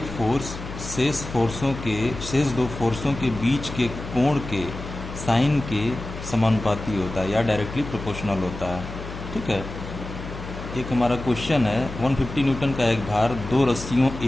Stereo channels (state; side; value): noise; left; hum, 10 dB below the sound